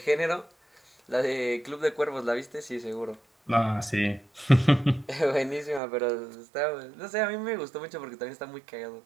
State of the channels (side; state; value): left; drops out; at 5.8 s